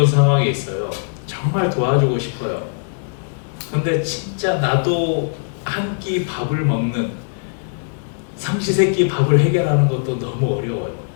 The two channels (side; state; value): right; silent; digital silence